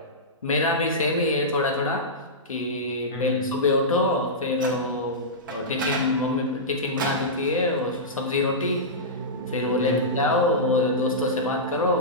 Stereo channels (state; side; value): normal; both; correlation -0.15